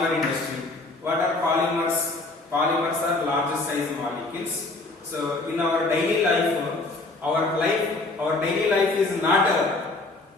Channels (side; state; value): right; quieter; 3.2 dB